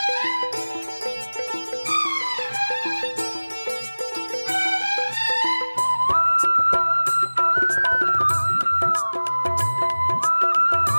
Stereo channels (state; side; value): inverted; both; correlation -1.00